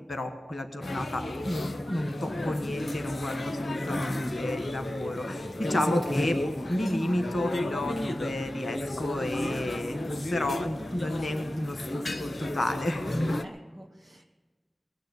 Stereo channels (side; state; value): both; normal; correlation 0.94